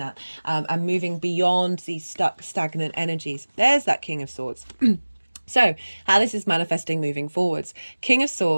and moving beyond these stuck, stagnant energies. There's that King of Swords. So, how this is manifesting moving forwards. King of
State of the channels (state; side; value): inverted; both; correlation -1.00